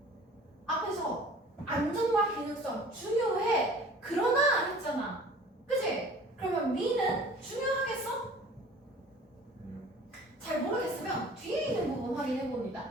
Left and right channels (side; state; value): both; normal; correlation 0.47